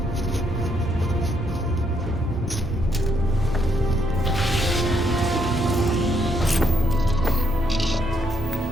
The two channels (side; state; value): both; normal; correlation 0.74